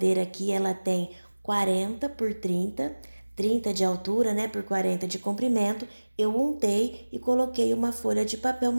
aqui, ela tem 40 por 30, 30 de altura, né, por 40 de comprimento. Eu untei e coloquei uma folha de papel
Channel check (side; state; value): both; inverted; correlation -1.00